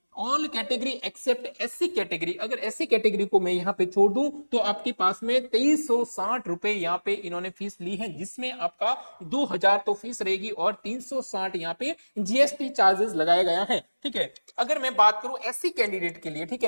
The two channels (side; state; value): both; inverted; correlation -1.00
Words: All category except SC category, अगर एससी कैटेगरी को मैं यहाँ पे छोड़ दूं तो आपके पास में 2360 रुपए यहाँ पे इन्होंने फीस ली है, जिसमें आपका 2000 तो फीस रहेगी और 360 यहाँ पे जीएसटी चार्जेस लगाया गया है। ठीक है, अगर मैं बात करूं एससी कैंडिडेट के लिए, ठीक